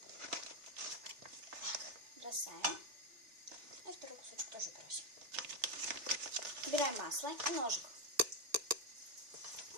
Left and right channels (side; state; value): left; late; 3.4 ms